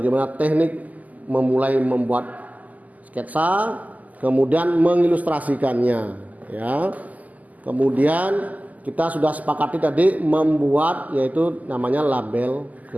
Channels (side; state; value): left; late; 0.078 ms